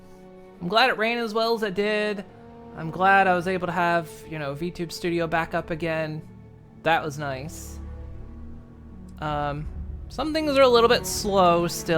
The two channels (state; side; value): identical; both; correlation 1.00